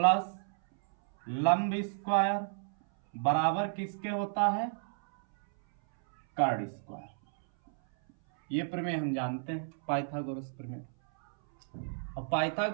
लंब स्क्वायर बराबर किसके होता है, कर्ण स्क्वायर। ये प्रमेय हम जानते हैं पाइथागोरस प्रमेय। और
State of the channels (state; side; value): silent; left; 57 dB below the other